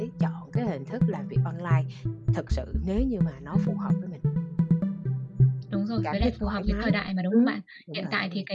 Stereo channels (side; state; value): both; identical; correlation 1.00